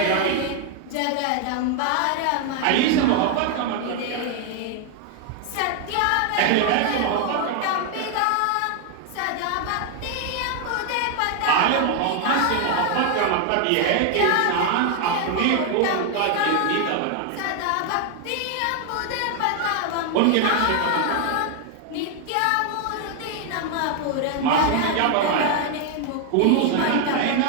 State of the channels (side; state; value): both; different; correlation 0.00